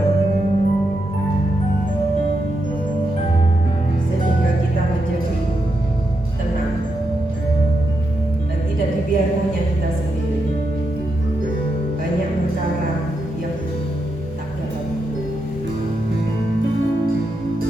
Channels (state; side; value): normal; both; correlation 0.84